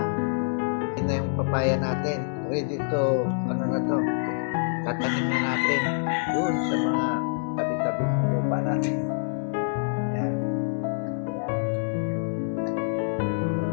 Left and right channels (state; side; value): silent; right; 61 dB below the other